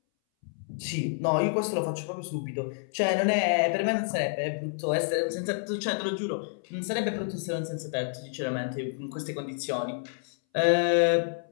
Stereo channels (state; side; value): silent; right; 59 dB below the other